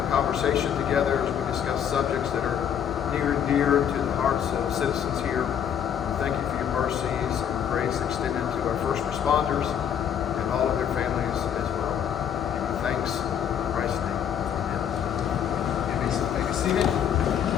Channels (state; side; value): quieter; right; 8.9 dB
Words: Together as we discuss subjects that are near and dear to the hearts of citizens here. Thank you for your mercies and grace extended to our first responders and all of their families as well. Give you thanks in Christ's name. Amen. May be seated.